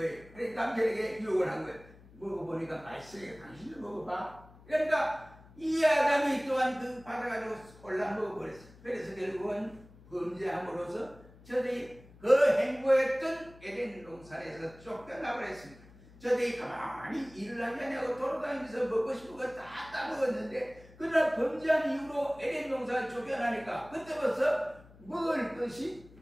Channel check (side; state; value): left; noise; hum, 23 dB below the sound